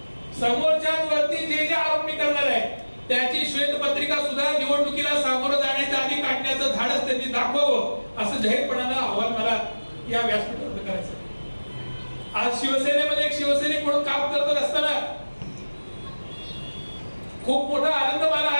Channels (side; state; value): both; inverted; correlation -1.00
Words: समोरच्यांवरती जे आरोप मी करणार आहे त्याची श्वेतपत्रिका सुद्धा निवडणुकीला सामोरं जाण्याच्या आधी काढण्याचं धाडस त्यांनी दाखवावं असं जाहीरपणानं आव्हान मला या व्यासपीठावर करायचं आहे। आज शिवसेनेमध्ये एक शिवसैनिक म्हणून काम करत असताना खूप मोठा आनंद मला